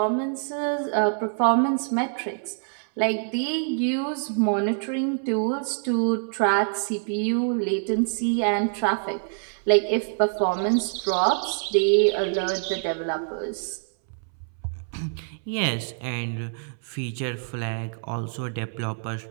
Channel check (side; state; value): left; silent; 61 dB below the other